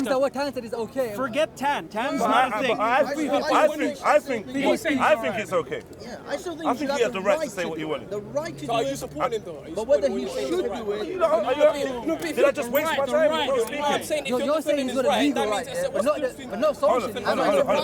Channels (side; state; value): both; identical; correlation 1.00